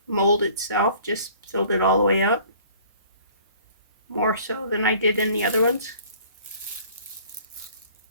mold itself, just filled it all the way up. More so than I did in the other ones.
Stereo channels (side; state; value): both; inverted; correlation -0.53